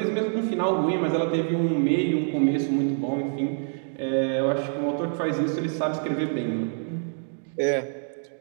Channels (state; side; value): silent; left; digital silence